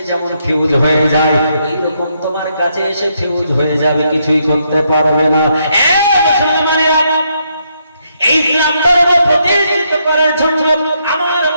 যেমন ফিউজ হয়ে যায়, এইরকম তোমার কাছে এসে ফিউজ হয়ে যাবে, কিছুই করতে পারবে না। এই ইসলাম ধর্ম প্রতিষ্ঠিত করার জন্য আমার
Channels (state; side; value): inverted; both; correlation -0.76